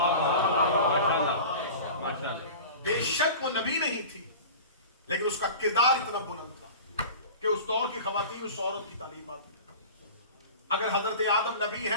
بے شک وہ نبی نہیں تھی لیکن اس کا کردار اتنا بلند تھا کہ اس دور کی خواتین اس عورت کی تعلیمات میں. اگر حضرت آدم نبی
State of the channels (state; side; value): inverted; both; correlation -0.36